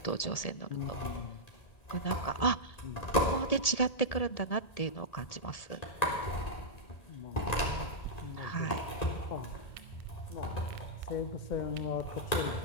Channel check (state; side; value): late; right; 1.7 ms